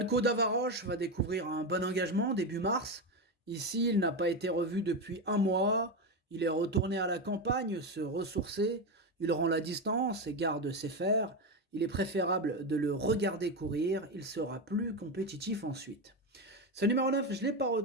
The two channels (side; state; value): both; normal; correlation 0.14